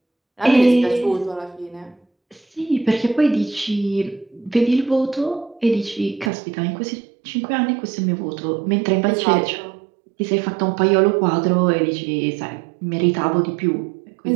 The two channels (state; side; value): drops out; left; at 6.3 s